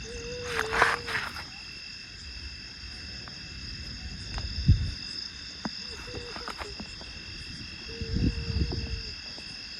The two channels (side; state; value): both; identical; correlation 1.00